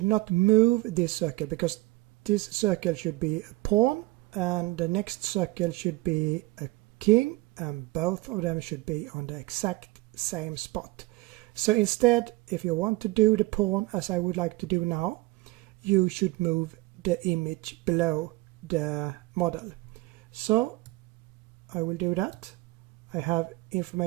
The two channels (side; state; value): left; quieter; 21.0 dB